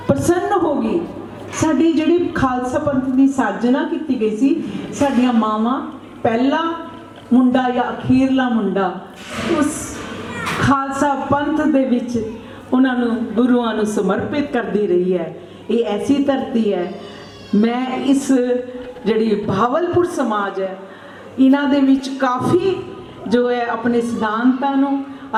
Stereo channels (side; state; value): both; identical; correlation 1.00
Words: प्रसन्न हो गई। साडी जिहड़ी खालसा पंथ की साजना की गई सी, साडियां मावां पहला मुंडा या अखीरला मुंडा उस खालसा पंथ दे विच उन्हां नूं गुरुआं नूं समर्पित करदी रही है। ये ऐसी धरती है। मैं इस जिहड़ी भावलपुर समाज है, इन्हां दे विच काफ़ी जो है अपने सिद्धांतां नूं,